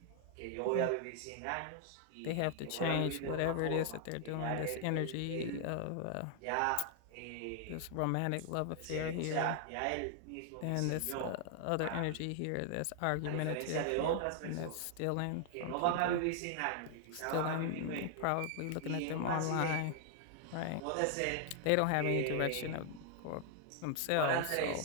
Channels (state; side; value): different; both; correlation 0.00